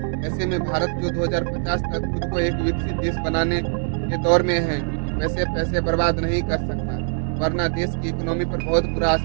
ऐसे में भारत जो 2050 तक खुद को एक विकसित देश बनाने के दौर में है, वैसे पैसे बर्बाद नहीं कर सकता, वरना देश की इकोनॉमी पर बहुत बुरा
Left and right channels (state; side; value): silent; left; digital silence